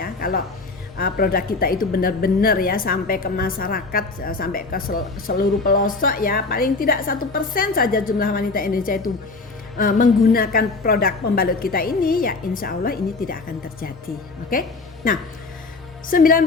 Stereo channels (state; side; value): quieter; right; 3.8 dB